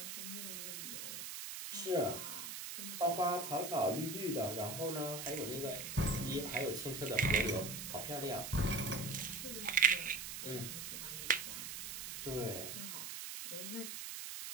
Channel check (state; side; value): noise; right; hiss, 6 dB below the sound